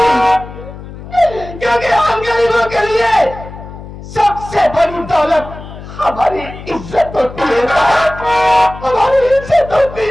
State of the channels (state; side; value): noise; left; hum, 14 dB below the sound